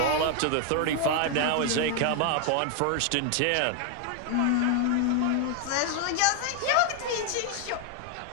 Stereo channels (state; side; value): different; both; correlation 0.00